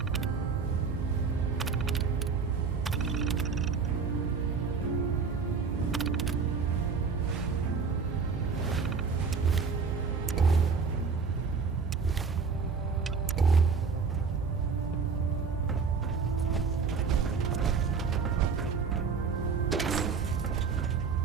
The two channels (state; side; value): quieter; left; 5.4 dB